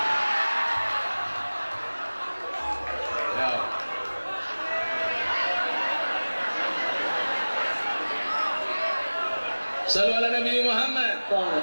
Ya. Shallu ala Nabi Muhammad.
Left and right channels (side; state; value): both; inverted; correlation -1.00